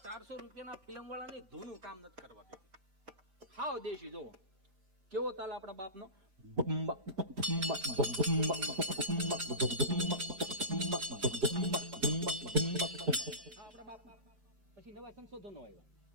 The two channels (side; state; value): left; late; 5.1 ms